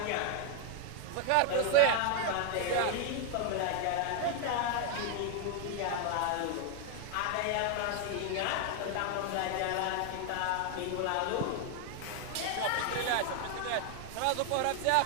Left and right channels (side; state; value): both; different; correlation 0.00